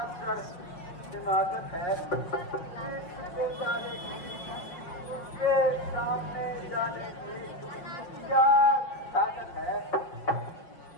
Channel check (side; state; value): right; late; 5.7 ms